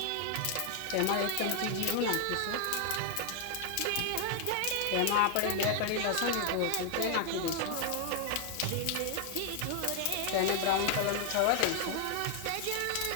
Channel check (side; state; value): both; different; correlation 0.00